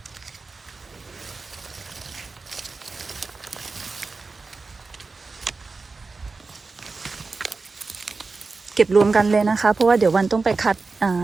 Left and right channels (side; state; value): left; quieter; 4.1 dB